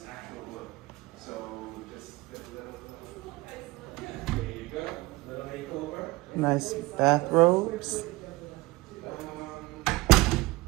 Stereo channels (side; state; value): left; quieter; 21.0 dB